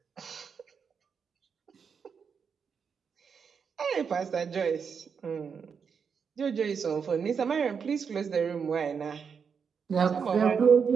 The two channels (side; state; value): left; quieter; 6.3 dB